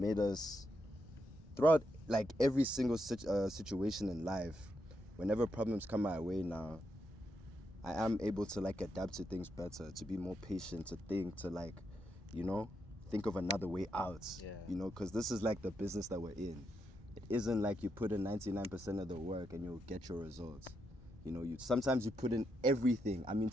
us... Throughout, like, every single situation in life, whenever problems come my way now, I am able to, like, adapt to things better, to be more patient, to think, to, like, you know, think of another way out. Yeah. You know, because this is, like, the business that we're in. It isn't like you put in 99% of the work and you'll get your results. You know, sometimes you put in everything. I mean,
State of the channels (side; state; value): both; normal; correlation 0.81